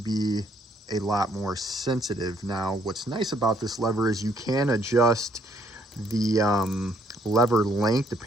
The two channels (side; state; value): both; normal; correlation 0.68